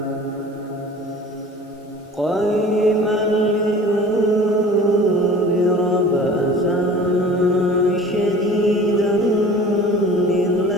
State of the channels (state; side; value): normal; both; correlation 0.44